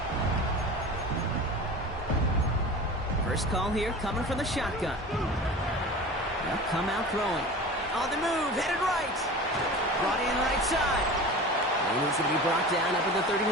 First call here coming from the shotgun. They'll come out throwing. On the move, headed right. Brought in right side. And he's going to be brought down up at the 31.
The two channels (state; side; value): normal; both; correlation 0.35